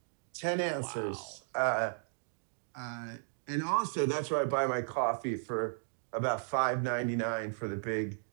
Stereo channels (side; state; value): left; silent; digital silence